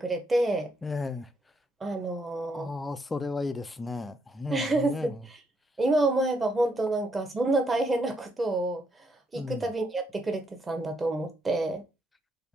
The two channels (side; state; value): both; normal; correlation 0.75